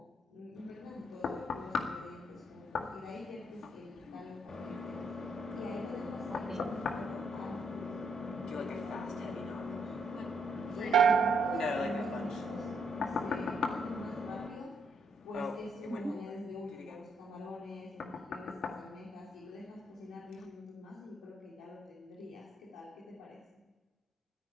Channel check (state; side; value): normal; both; correlation 0.74